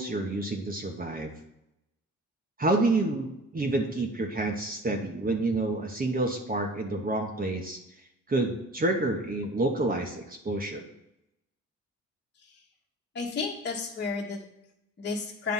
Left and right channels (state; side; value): normal; both; correlation 0.42